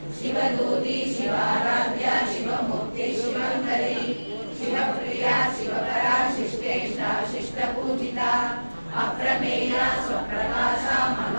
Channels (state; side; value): inverted; both; correlation -1.00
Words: शिवदूती शिवाराध्या शिवमूर्ति शिवङ्करी शिवप्रिया शिवपरा शिष्टेष्टा शिष्टपूजिता